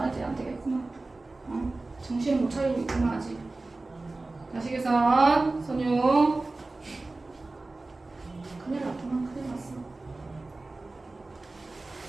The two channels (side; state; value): left; quieter; 3.2 dB